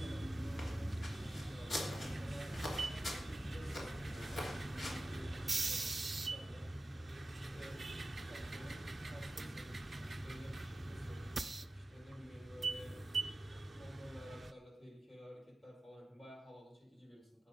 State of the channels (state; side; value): normal; both; correlation 0.95